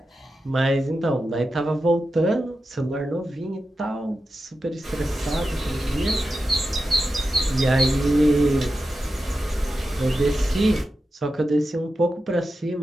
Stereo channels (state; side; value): normal; both; correlation 0.90